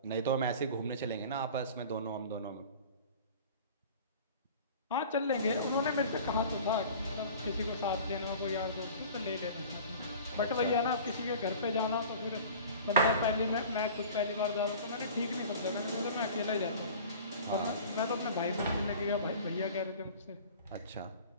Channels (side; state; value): both; inverted; correlation -0.42